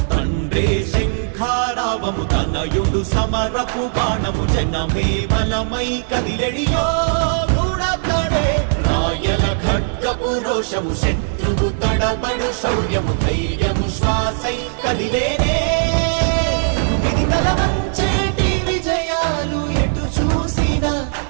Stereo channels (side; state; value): left; silent; 67 dB below the other